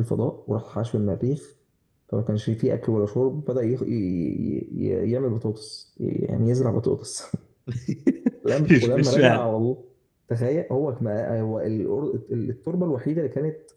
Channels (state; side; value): identical; both; correlation 1.00